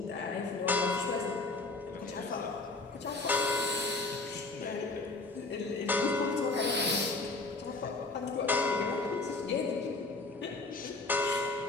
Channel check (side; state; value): right; quieter; 3.4 dB